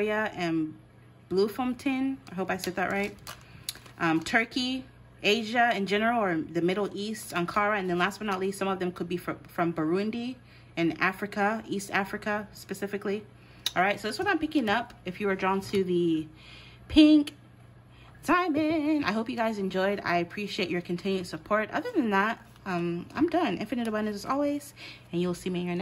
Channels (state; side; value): identical; both; correlation 1.00